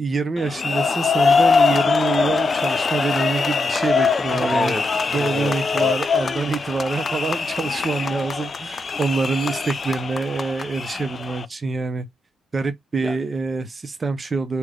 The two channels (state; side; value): normal; both; correlation 0.84